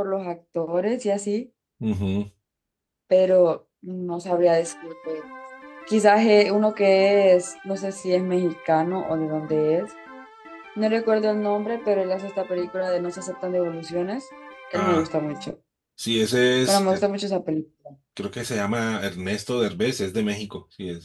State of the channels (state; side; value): identical; both; correlation 1.00